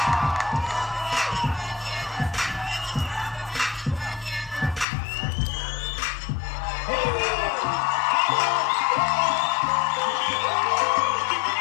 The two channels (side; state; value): right; drops out; at 4.9 s